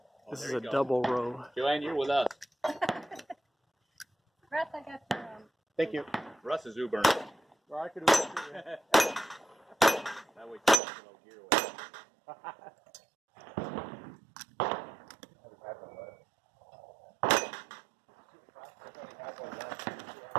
This is a double row. Joanne, you're with us. Russ, I got the Thank you. Russ is Ubering. Well, I could do it. That way you can get a little gear away.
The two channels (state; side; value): drops out; left; at 10.8 s